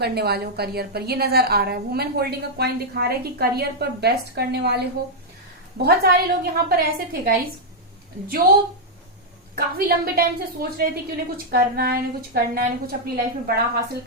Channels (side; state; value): both; normal; correlation -0.04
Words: वाले हो करियर पर, ये नजर आ रहा है। वुमेन होल्डिंग अ कॉइन दिखा रहा है कि करियर पर बेस्ट करने वाले हो। बहुत सारे लोग यहाँ पर ऐसे थे गाइज जो काफी लंबे टाइम से सोच रहे थे कि उन्हें कुछ करना है, उन्हें कुछ करना है, उन्हें कुछ अपनी लाइफ में बड़ा हासिल